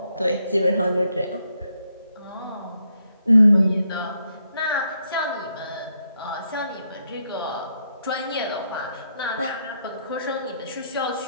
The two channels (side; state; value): both; inverted; correlation -0.77